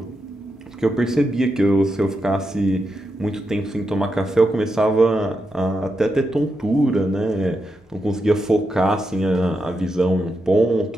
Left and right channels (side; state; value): both; normal; correlation 0.85